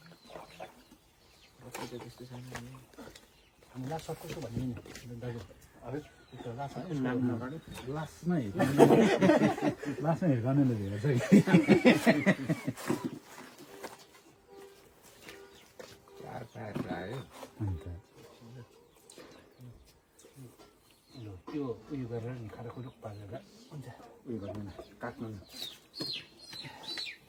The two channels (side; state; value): both; identical; correlation 1.00